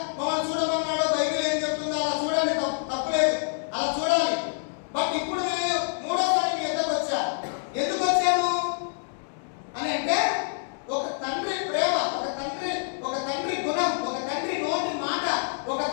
మమ్మల్ని చూడమన్నాడో బైబిల్ ఏం చెప్తుందో అలా చూడండి, తప్పులేదు, అలా చూడాలి. బట్ ఇప్పుడు నేను మూడోసారి మీ ఎద్దకు వచ్చా. ఎందుకు వచ్చాను అని అంటే, ఒక తండ్రి ప్రేమ, ఒక తండ్రి గుణం, ఒక తండ్రి నోటి మాట, ఒక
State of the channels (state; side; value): silent; right; 60 dB below the other